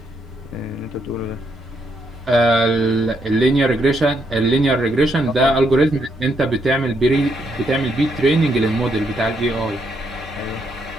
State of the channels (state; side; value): normal; both; correlation 0.76